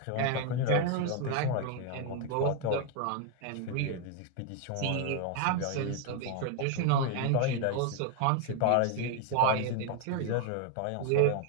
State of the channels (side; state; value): both; different; correlation 0.01